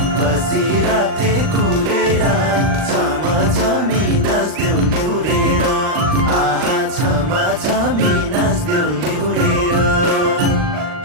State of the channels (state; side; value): late; left; 39 ms